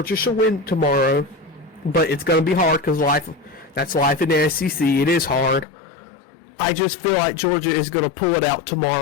should win tomorrow, but it's going to be hard because that's life in the SEC. It is hard. I just feel like Georgia is going to pull it out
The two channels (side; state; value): right; drops out; at 5.7 s